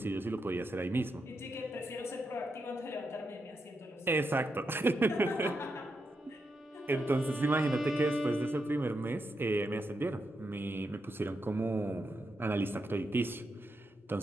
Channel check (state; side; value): normal; both; correlation 0.84